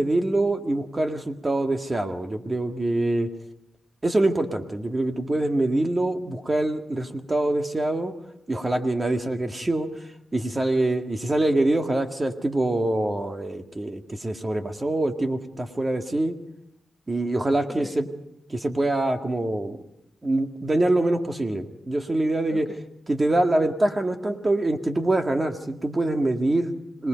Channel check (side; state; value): both; normal; correlation 0.94